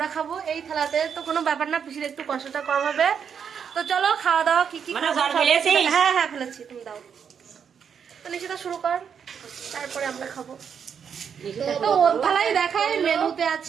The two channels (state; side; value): quieter; left; 7.3 dB